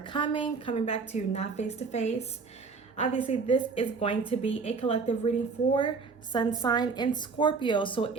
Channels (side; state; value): left; quieter; 4.8 dB